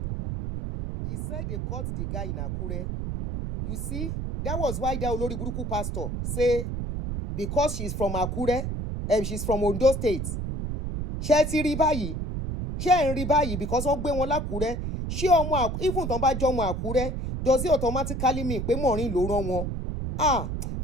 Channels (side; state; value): right; noise; rumble, 3 dB below the sound